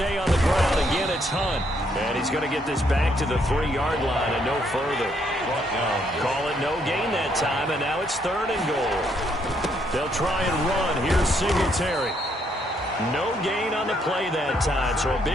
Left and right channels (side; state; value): both; normal; correlation 0.72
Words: on the ground. Again, it's Hunt. And he's going to get this back to the 3-yard line and no further. Call it no gain that time, and now it's 3rd and goal. They'll try and run. Here's Singletary. No gain on the play that time, so a